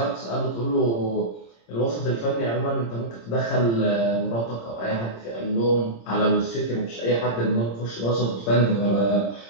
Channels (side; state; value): right; late; 26 ms